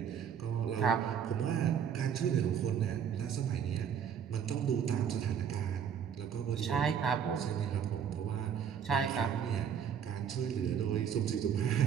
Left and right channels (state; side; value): quieter; left; 8.0 dB